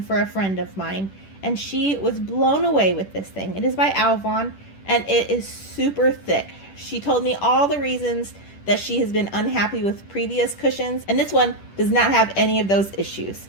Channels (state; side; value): late; right; 10 ms